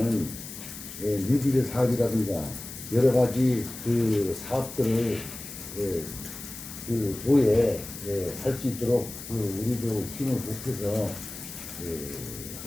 뉴딜 사업이라든가 여러 가지 그 사업들을 그 도에 할 수 있도록 우리도 힘을 보태서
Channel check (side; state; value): left; noise; hiss, 12 dB below the sound